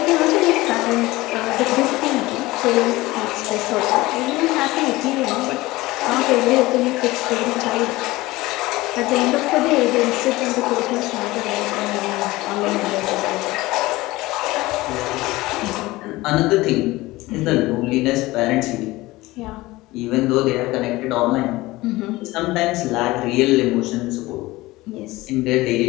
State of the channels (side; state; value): right; quieter; 19.5 dB